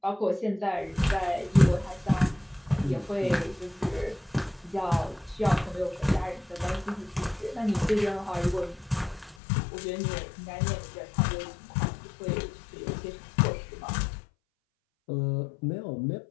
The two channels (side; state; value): right; drops out; at 9.3 s